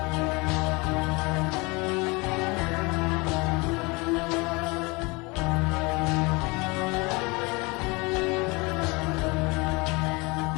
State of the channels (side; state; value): right; quieter; 26.5 dB